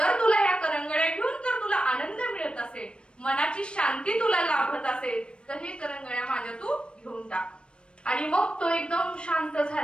तुला ह्या करंगळ्या घेऊन जर तुला आनंद मिळत असेल, मनाची शांती तुला लाभत असेल, तर हे करंगळ्या माझ्या तू घेऊन टाक. आणि मग तो एकदम शांत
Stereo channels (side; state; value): right; late; 0.056 ms